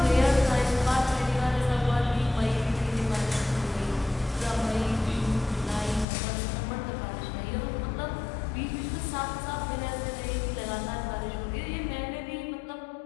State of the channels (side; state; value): right; drops out; at 6.1 s